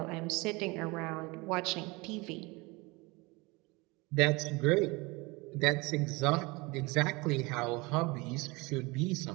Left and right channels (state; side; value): quieter; left; 25.0 dB